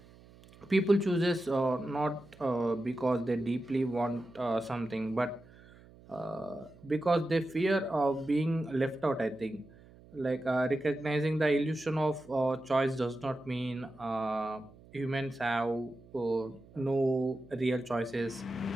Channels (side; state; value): right; noise; hum, 23 dB below the sound